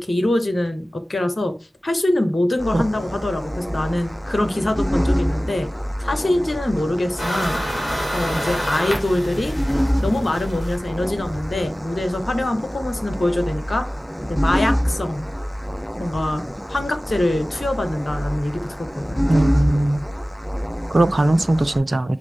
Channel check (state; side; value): normal; both; correlation 0.97